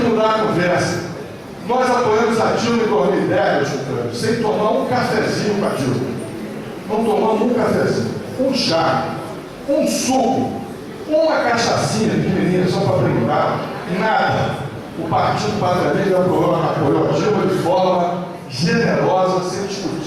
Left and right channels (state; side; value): identical; both; correlation 1.00